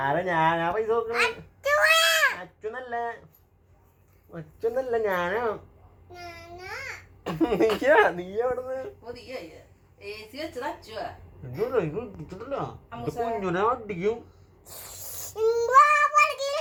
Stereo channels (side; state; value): both; identical; correlation 1.00